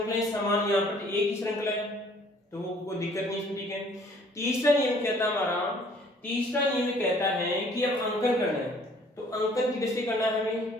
समान, यहाँ पर एक ही श्रृंखला है तो वो कोई दिक्कत नहीं इसमें। ठीक है, तीसरा नियम कहता है हमारा, तीसरा नियम कहता है कि अब अंकन करना है। तो अंकन किधर से करना है हमें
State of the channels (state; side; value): normal; both; correlation 0.57